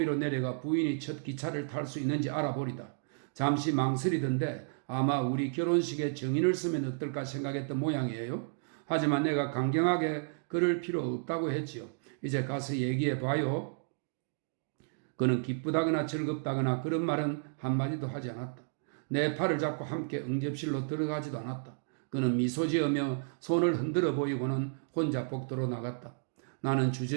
내려가 부인이 첫 기차를 탈 수 있는지 알아보리다. 잠시 망설이던데 아마 우리 결혼식에 정인을 쓰면 어떨까 생각했던 모양이에요. 하지만 내가 강경하게 그럴 필요 없다고 했지요. 이제 가서 얘기해봐요. 그는 기쁘다거나 즐겁다거나 그런 말은 한마디도 하지 않았다. 내 팔을 잡고 함께 응접실로 들어가지도 않았다. 그는 미소 지으며 손을 흔들어 보이고는 혼자 복도로 나갔다. 나는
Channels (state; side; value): silent; left; digital silence